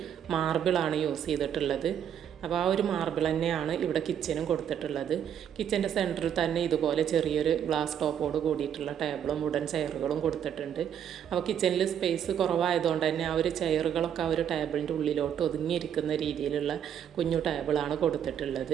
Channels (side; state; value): left; quieter; 9.1 dB